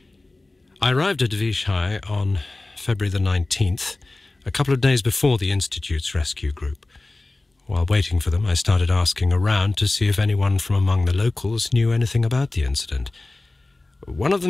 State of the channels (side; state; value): right; quieter; 3.0 dB